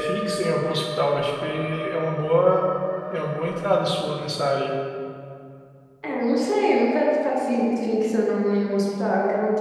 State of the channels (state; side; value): identical; both; correlation 1.00